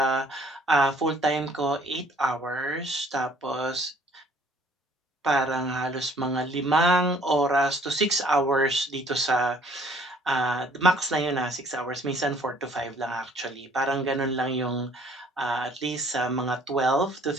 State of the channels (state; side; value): normal; both; correlation 0.58